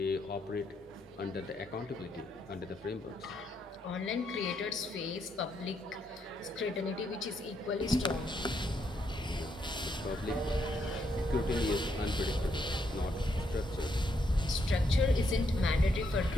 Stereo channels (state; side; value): normal; both; correlation 0.76